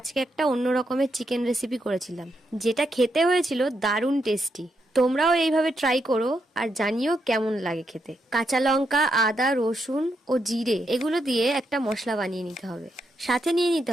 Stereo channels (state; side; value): normal; both; correlation 0.81